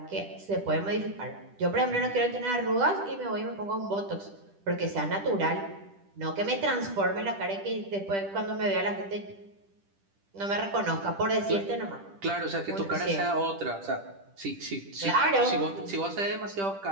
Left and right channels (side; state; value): left; late; 10 ms